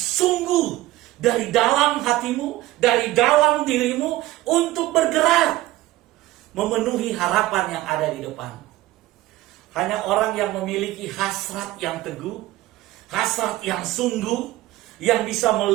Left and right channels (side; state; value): left; quieter; 16.9 dB